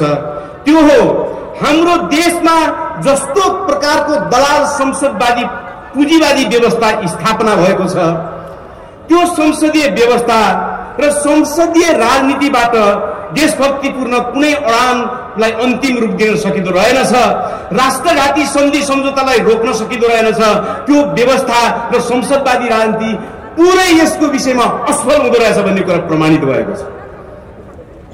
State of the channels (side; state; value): both; identical; correlation 1.00